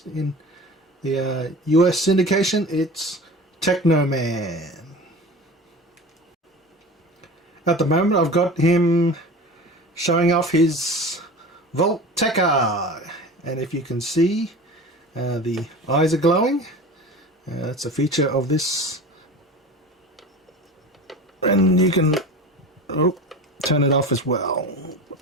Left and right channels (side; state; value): both; normal; correlation 0.35